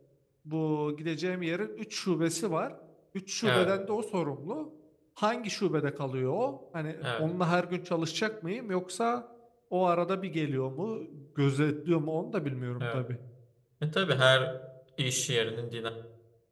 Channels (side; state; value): both; identical; correlation 1.00